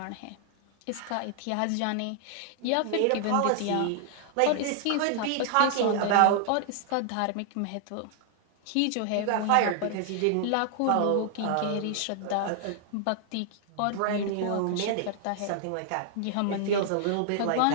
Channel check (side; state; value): both; different; correlation 0.00